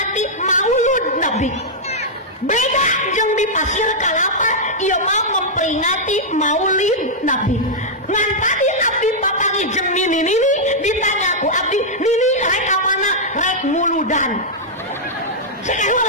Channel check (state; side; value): normal; both; correlation -0.07